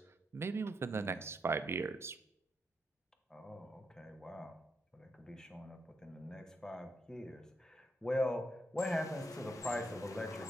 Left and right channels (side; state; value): both; normal; correlation 0.81